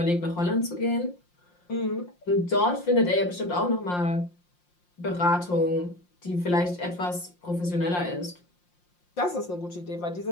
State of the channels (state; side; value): late; right; 5.7 ms